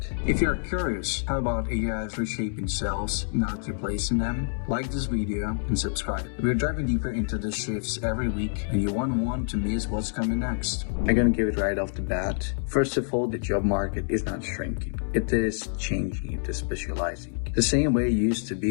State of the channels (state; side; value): silent; right; 60 dB below the other